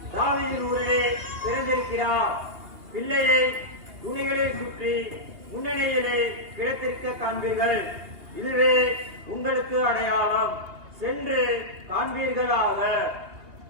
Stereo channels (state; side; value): late; left; 2.8 ms